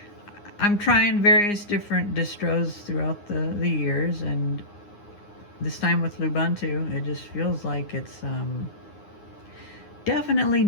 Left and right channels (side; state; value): right; late; 9.7 ms